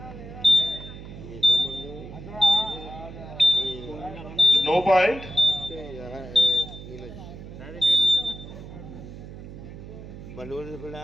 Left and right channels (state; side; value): noise; right; hum, 13 dB below the sound